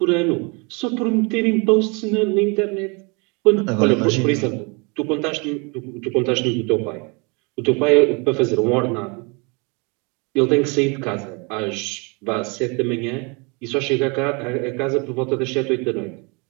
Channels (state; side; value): quieter; left; 30.8 dB